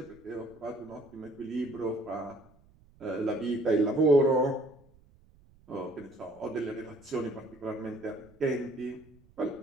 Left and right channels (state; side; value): noise; right; rumble, 28 dB below the sound